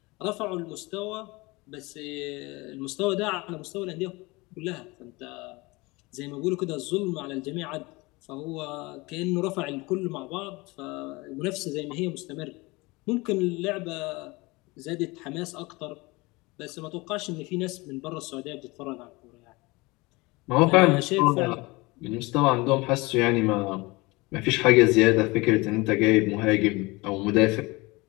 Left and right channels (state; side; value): quieter; right; 23.8 dB